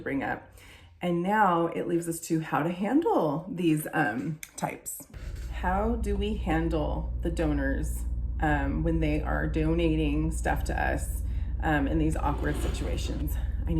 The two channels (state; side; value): identical; both; correlation 1.00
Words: up. And now it leaves us to how to handle these types. How do we handle the donors when they are donating stuff to us in these awkward situations? I